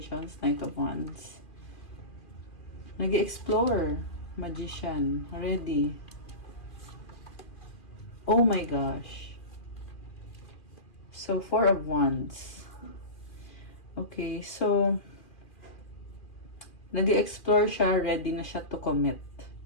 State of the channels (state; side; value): late; right; 2.4 ms